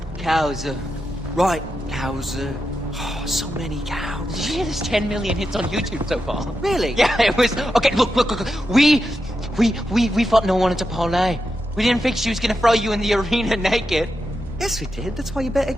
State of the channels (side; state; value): both; normal; correlation 0.88